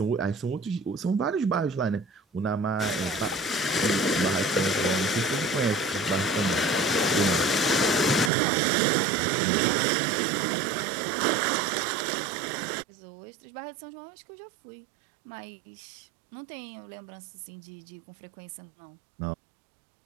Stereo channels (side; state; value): left; drops out; at 8.3 s